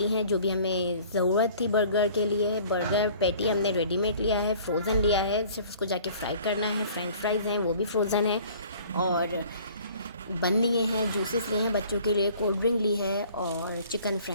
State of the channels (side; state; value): both; inverted; correlation -0.51